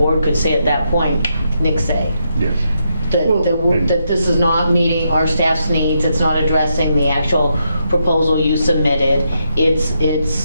could say at that point, Nick say. Yes. That this is not meeting our staff's needs, it's not addressing the actual proposal you submitted,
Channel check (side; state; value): both; inverted; correlation -0.81